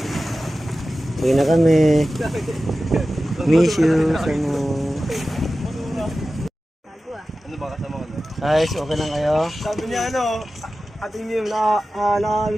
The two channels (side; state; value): both; normal; correlation 0.95